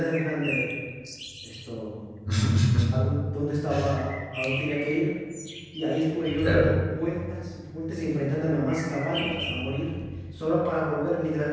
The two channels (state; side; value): identical; both; correlation 1.00